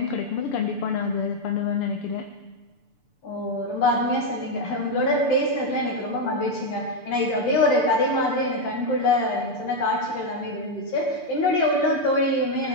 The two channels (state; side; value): late; right; 6.8 ms